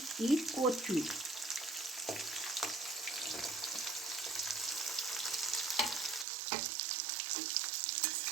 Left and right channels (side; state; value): left; drops out; at 6.2 s